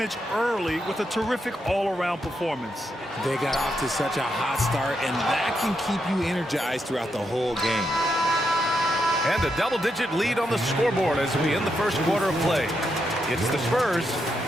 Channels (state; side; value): normal; both; correlation 0.82